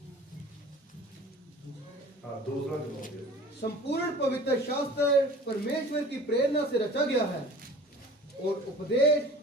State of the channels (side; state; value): both; normal; correlation 0.43